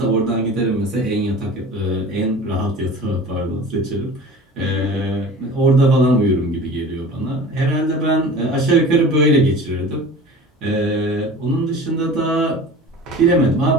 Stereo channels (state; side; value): normal; both; correlation 0.39